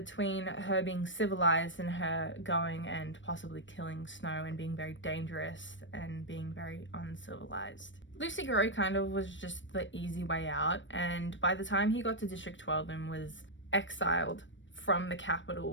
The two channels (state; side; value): late; right; 0.55 ms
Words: her being civilized and her going and possibly killing Snow and being very dangerous and being very uncivilized. Lucy Gray kind of was just the easy way out, and by the time he got to District 12 and was exiled from the